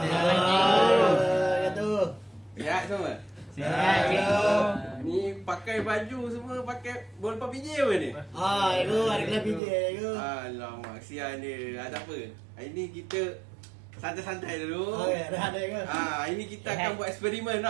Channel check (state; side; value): drops out; left; at 9.6 s